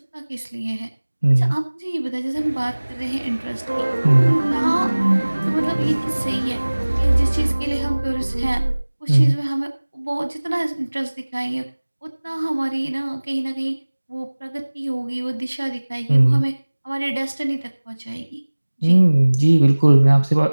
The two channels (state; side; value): inverted; both; correlation -1.00